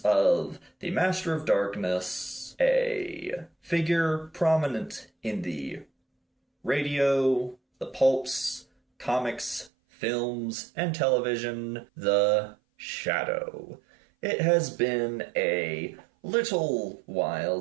of the Master of Darkness, a figure prominent in the radio, the pulps, comics, films, and television, the Shadow. It has been a little while,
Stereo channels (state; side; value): drops out; left; at 9.7 s